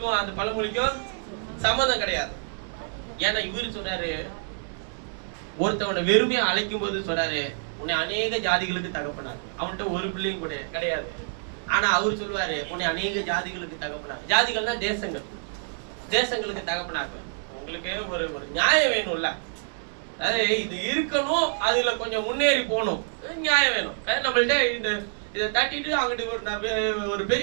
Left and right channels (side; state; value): left; silent; digital silence